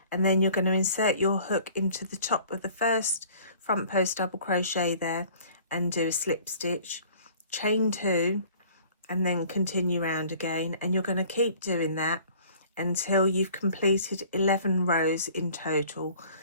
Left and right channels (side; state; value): both; inverted; correlation -0.52